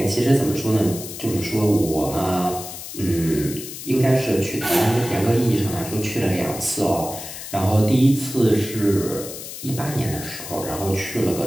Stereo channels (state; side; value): noise; left; hiss, 10 dB below the sound